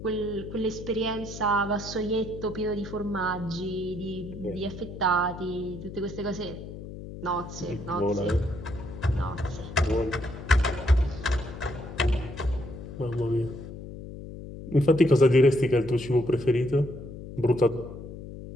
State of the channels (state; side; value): noise; left; hum, 11 dB below the sound